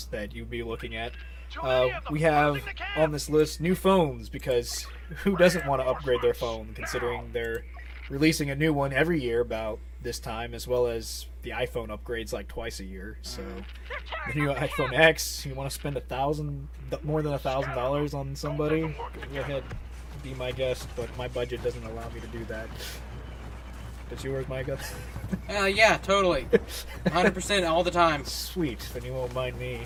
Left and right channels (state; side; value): identical; both; correlation 1.00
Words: that you'd be looking at, we have on this list new phones, because who doesn't want to upgrade their phone, considering they're releasing a new one every year about this time, as well as the iPhone upgrades like twice a year. So the new iPhone X, you want to spend more than $1,000 on somebody, go ahead, be my guest, but my budget doesn't allow me to do that. Does yours, Micah? Yeah, totally. 100% all the time. Sweet, then you won't mind